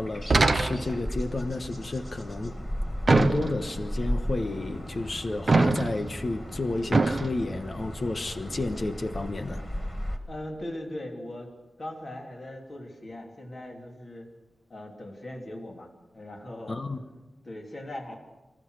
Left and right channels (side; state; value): both; normal; correlation 0.94